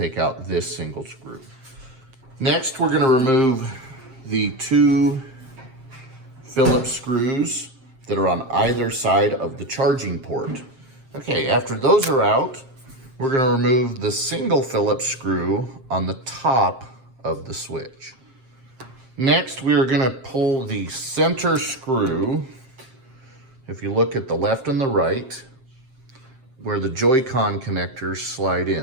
out this single screw. Next, we're gonna remove the 2 Phillips screws that are on either side of the charging port. Okay, after those are out, we're gonna remove the single Phillips screw on the top of the switch. Next, we are gonna pull the center screw. If you look at the left and the right, where the Joy-Con connectors slide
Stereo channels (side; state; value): left; late; 7.6 ms